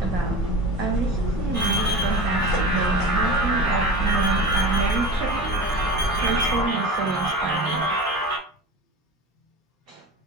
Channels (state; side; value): normal; both; correlation 0.32